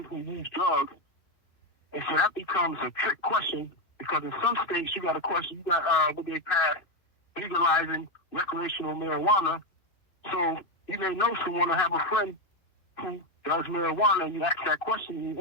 who uses drugs? And so that becomes a trick question because in some states you got a question, you got what they passed legalizing recreational marijuana. So you may know someone or have a friend who does marijuana, and you ask that question and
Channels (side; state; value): right; late; 2.6 ms